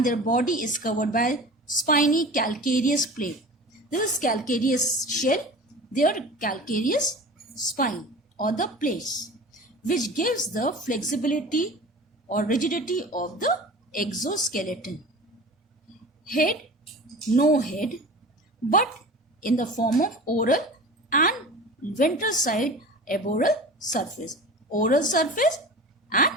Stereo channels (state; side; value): normal; both; correlation 0.37